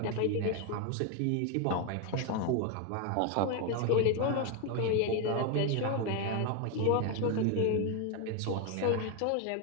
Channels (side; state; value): both; different; correlation 0.02